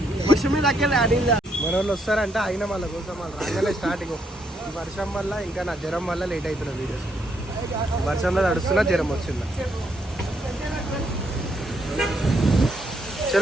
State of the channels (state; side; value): normal; both; correlation 0.75